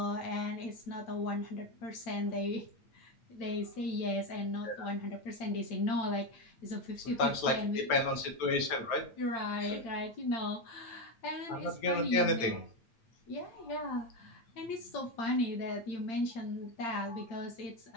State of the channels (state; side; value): late; right; 9.1 ms